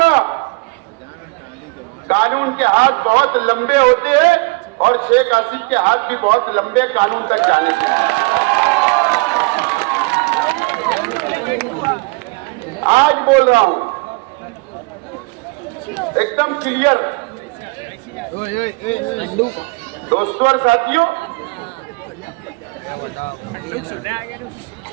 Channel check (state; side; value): quieter; left; 28.0 dB